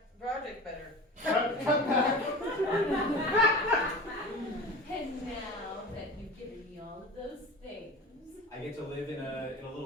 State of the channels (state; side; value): normal; both; correlation 0.35